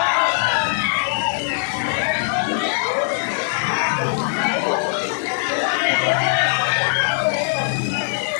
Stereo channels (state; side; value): silent; right; 65 dB below the other